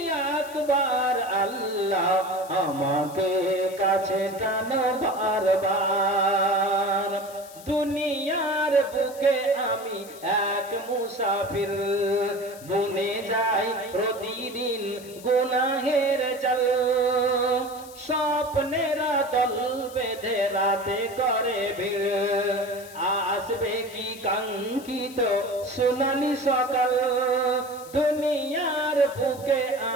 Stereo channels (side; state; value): left; noise; hiss, 19 dB below the sound